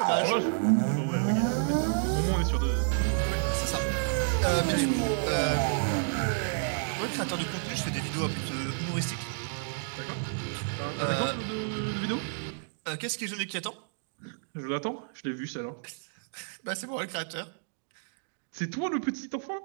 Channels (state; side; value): silent; left; digital silence